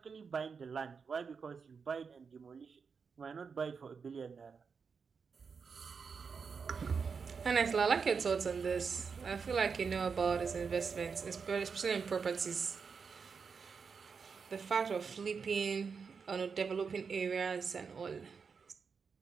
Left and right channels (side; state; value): left; quieter; 5.6 dB